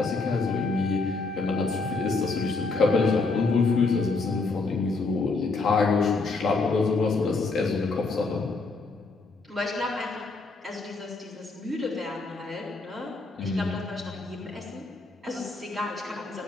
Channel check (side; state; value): right; quieter; 3.8 dB